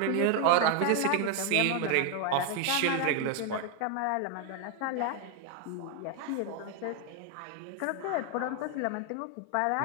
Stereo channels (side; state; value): both; different; correlation 0.01